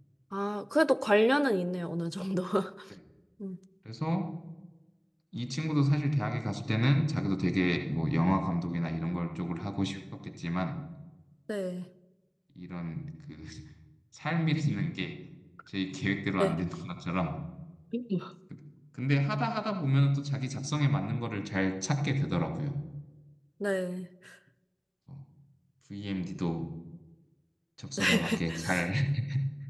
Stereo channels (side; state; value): both; identical; correlation 1.00